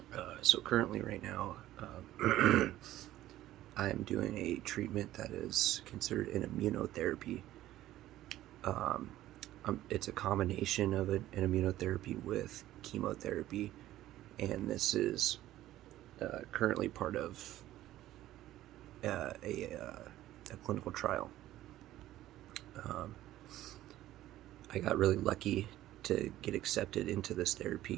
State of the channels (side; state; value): left; quieter; 14.3 dB